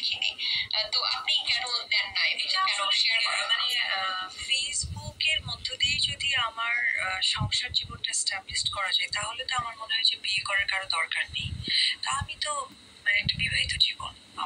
তো আপনি কেন দেন না, কেন শেয়ার করেন? মানে ফেসবুকের মধ্য দিয়ে যদি আমার সংসার জীবনটা এস্টাবলিশ করা যায় তাহলে তো আমার মনে হয় যে বিয়ে করার কারো দরকার নেই। তা আমি তো মানে একটা বিবাহিত জীবন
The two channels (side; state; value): both; identical; correlation 1.00